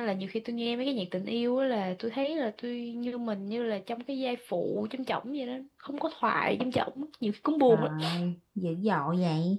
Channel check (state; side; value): identical; both; correlation 1.00